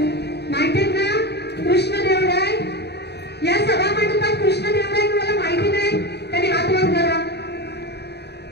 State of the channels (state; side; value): late; right; 0.48 ms